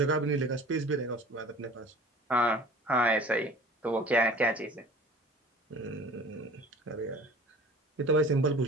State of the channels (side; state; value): both; normal; correlation 0.45